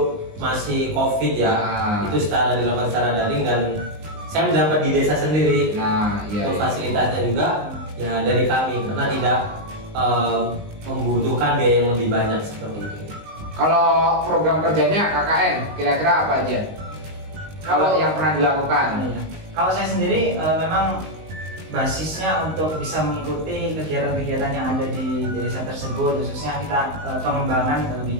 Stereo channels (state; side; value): late; left; 19 ms